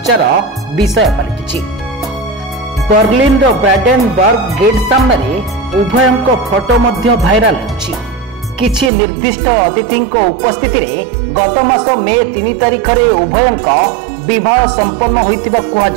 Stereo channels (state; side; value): drops out; left; at 8.9 s